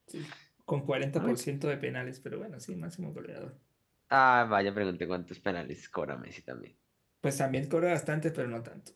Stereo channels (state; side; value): identical; both; correlation 1.00